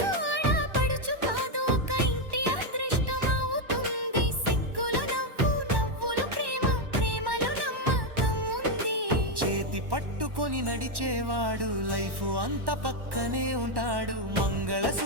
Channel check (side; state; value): left; late; 1.1 ms